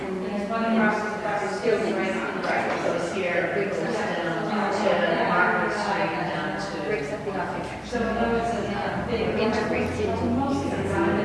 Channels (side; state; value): both; identical; correlation 1.00